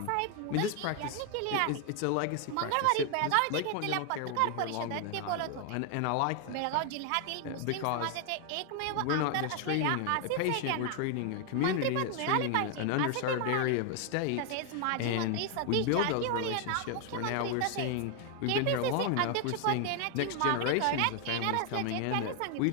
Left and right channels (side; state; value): both; different; correlation 0.00